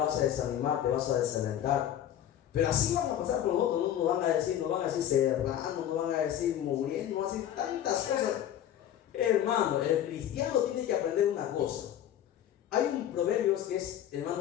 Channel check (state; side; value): quieter; right; 10.9 dB